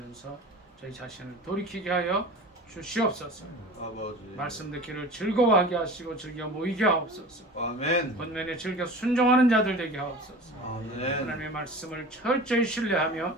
저희 자신을 돌이키게 하여 주시옵소서. 아버지 말씀 듣기를 즐거워하게 하시고 즐겨 모이게 하옵소서. 아멘 권면에 즐겨 순종하는 자들 되게 하옵소서. 아멘 하나님의 말씀을 철저히 신뢰하며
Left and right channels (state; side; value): normal; both; correlation 0.37